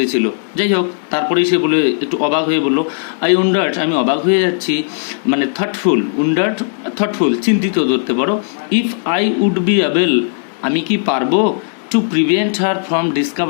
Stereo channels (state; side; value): silent; right; digital silence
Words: যাই হোক, তারপরেই সে বলে একটু অবাক হয়ে বলল, আই উন্ডার্ড, আমি অবাক হয়ে যাচ্ছি, মানে থটফুল, উন্ডার্ড থটফুল, চিন্তিত ধরতে পারো। If I would be able, আমি কি পারবো, to prevent her from